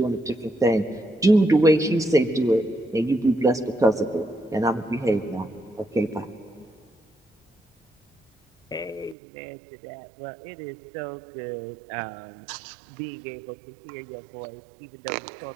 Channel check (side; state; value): left; drops out; at 9.2 s